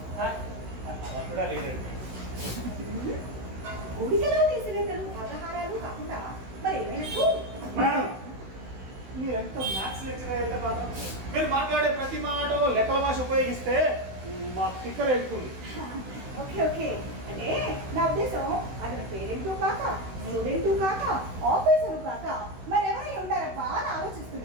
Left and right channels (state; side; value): late; left; 16 ms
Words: కూడా లేదండి. గుడికలో తీసినట్లు వ్యవహారాలు కాకుండా మరి ఏమైనట్టు? మేడం, మీరు ఎంత మ్యాథ్స్ లెక్చరర్ అయితే మాత్రం మీరు మాట్లాడే ప్రతి మాట లెక్కల భాష ఉపయోగిస్తే మా స్టిక్కర్ ఎక్కుతుంది. ఓకే ఓకే, అంటే నా ఉద్దేశం అతని పేరెంటు కాక, స్టూడెంటు కాక, ఆఫీసరు కాక మరి ఎవరై ఉంటారప్ప అని